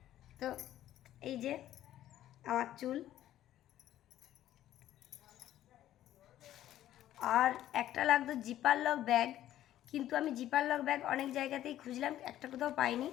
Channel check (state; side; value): quieter; right; 12.8 dB